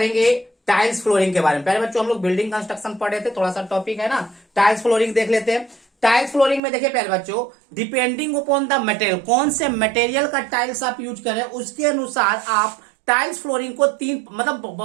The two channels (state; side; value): drops out; left; at 6.6 s